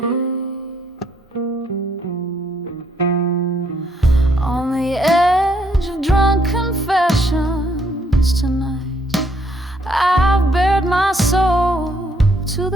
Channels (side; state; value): both; normal; correlation 0.70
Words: On the edge of drunk confessions tonight, I've bared my soul to